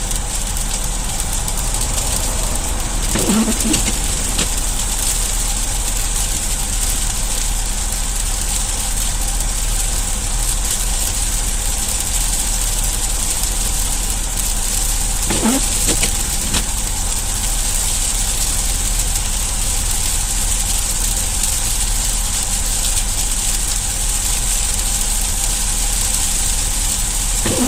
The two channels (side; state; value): both; identical; correlation 1.00